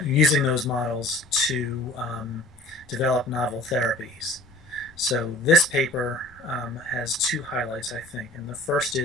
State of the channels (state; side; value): noise; left; rumble, 27 dB below the sound